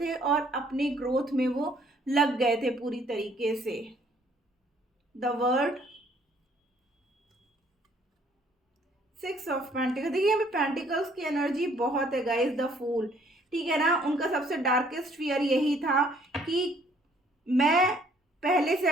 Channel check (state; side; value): normal; both; correlation 0.62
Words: और अपनी ग्रोथ में वो लग गए थे पूरी तरीके से। The word, six of pentacles, देखिए यहाँ पे पेंटिकल्स की एनर्जी बहुत है गाइस। द फूल, ठीक है ना, उनका सबसे डार्केस्ट फियर यही था कि मैं पहले से